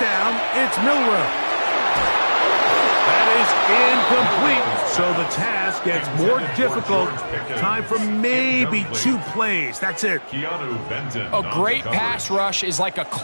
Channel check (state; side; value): inverted; both; correlation -1.00